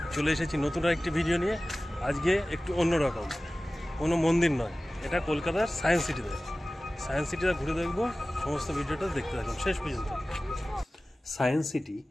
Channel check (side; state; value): both; normal; correlation 0.97